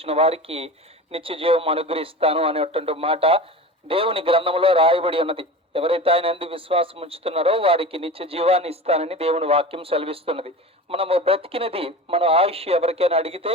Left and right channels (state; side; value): normal; both; correlation 0.32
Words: వారికి నిత్య జీవం అనుగ్రహిస్తాను అనేటువంటి మాట దేవుని గ్రంథంలో రాయబడి ఉన్నది. ఎవరైతే ఆయన యందు విశ్వాసం ఉంచుతున్నారో వారికి నిత్య జీవాన్ని ఇస్తానని దేవుని వాక్యం సెలవిస్తున్నది. మనము బ్రతికినది మన ఆయుష్ ఎవరికైనా అడిగితే